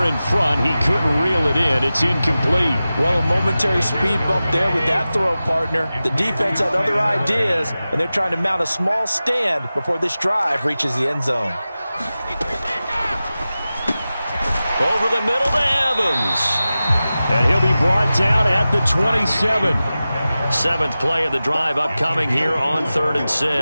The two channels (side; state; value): both; inverted; correlation -0.95